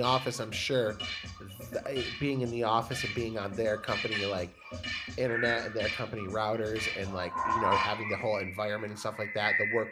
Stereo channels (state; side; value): identical; both; correlation 1.00